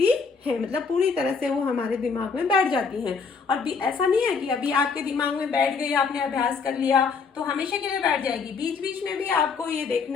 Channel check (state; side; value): quieter; right; 5.3 dB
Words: हैं, मतलब पूरी तरह से वो हमारे दिमाग में बैठ जाती हैं। और भी ऐसा नहीं है कि अभी आपके दिमाग में बैठ गई, आपने अभ्यास कर लिया तो हमेशा के लिए बैठ जाएगी। बीच बीच में भी आपको ये